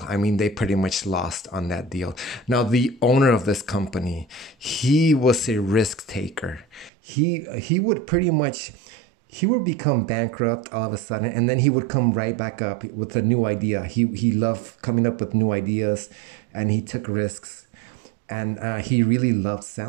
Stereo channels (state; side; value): drops out; left; at 6.9 s